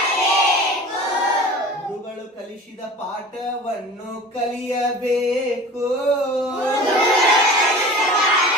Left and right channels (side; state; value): both; normal; correlation 0.39